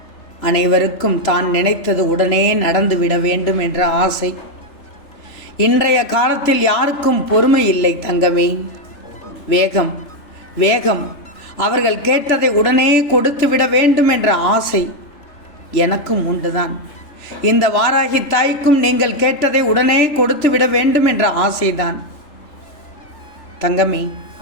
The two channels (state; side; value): late; right; 3.3 ms